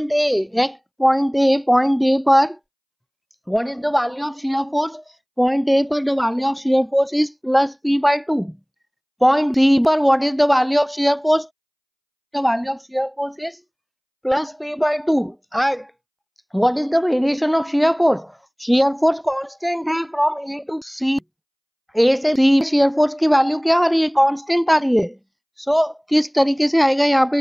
ए पर what is the value of shear force. Point A पर the value of shear force is plus P/2. Point C पर what is the value of shear force, the value of shear force is plus P/2. and what is the variation of shear force, shear force constant है from A to C. A से C shear force की value क्या आ रही है, constant आ रही है. सो किस तरीके से आएगा यहाँ पे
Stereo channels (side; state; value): both; identical; correlation 1.00